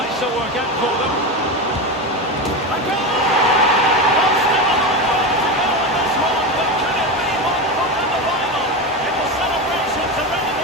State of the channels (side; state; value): both; normal; correlation 0.18